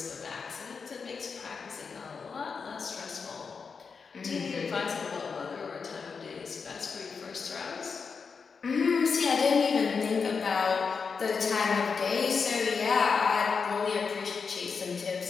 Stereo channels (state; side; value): quieter; right; 5.4 dB